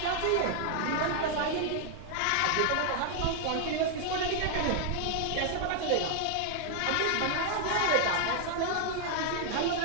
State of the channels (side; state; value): both; different; correlation 0.00